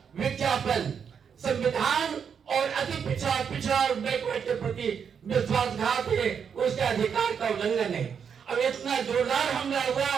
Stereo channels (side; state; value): left; quieter; 7.1 dB